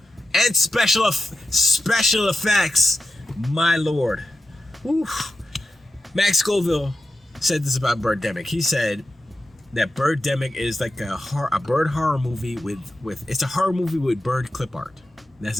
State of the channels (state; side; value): normal; both; correlation 0.91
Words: and special effects. My lord. Oof. Max Scoville said this about Birdemic. He said that Birdemic is like a bird horror movie with it's a horror movie with bird clip art. That's